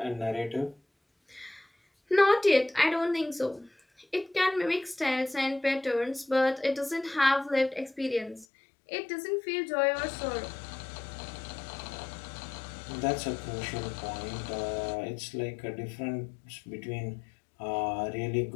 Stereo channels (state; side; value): drops out; right; at 8.5 s